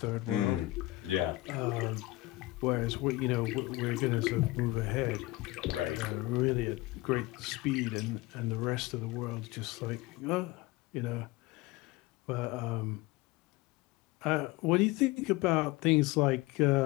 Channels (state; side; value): quieter; right; 19.6 dB